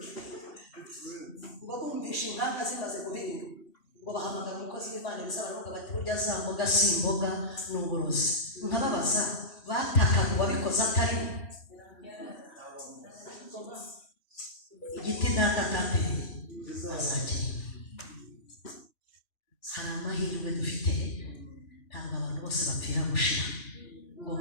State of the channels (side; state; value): right; late; 2.9 ms